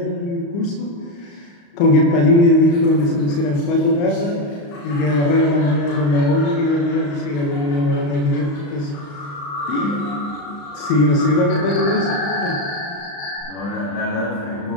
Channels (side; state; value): right; late; 35 ms